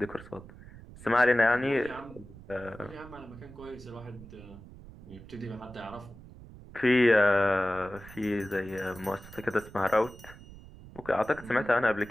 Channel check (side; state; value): right; noise; rumble, 18 dB below the sound